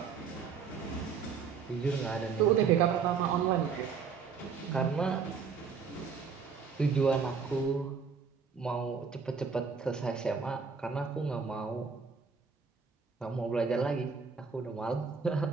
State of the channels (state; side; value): quieter; left; 5.8 dB